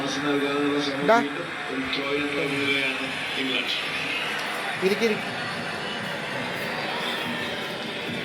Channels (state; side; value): identical; both; correlation 1.00